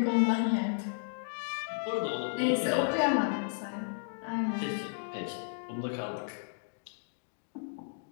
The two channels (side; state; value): right; silent; digital silence